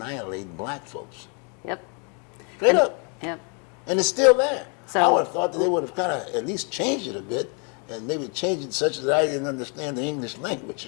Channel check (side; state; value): right; quieter; 37.0 dB